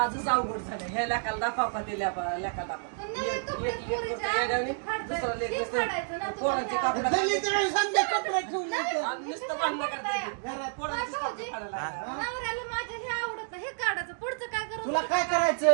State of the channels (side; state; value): left; silent; digital silence